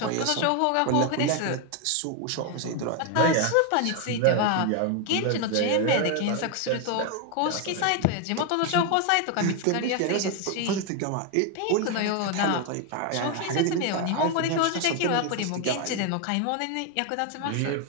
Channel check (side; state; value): both; different; correlation 0.01